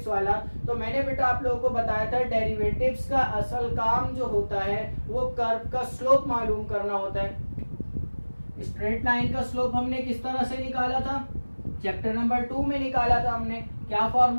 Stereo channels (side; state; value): both; inverted; correlation -1.00